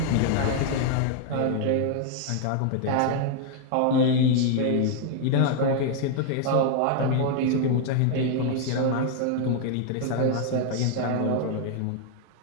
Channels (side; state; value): both; different; correlation 0.00